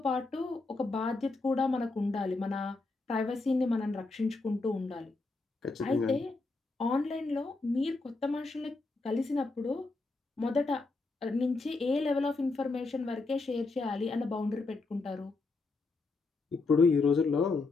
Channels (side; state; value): right; quieter; 3.6 dB